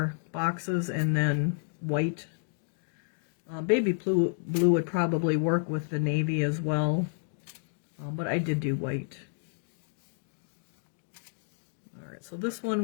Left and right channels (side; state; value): right; silent; digital silence